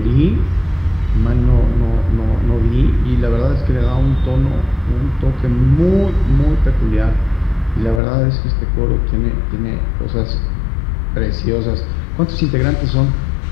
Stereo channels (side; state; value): right; drops out; at 8.0 s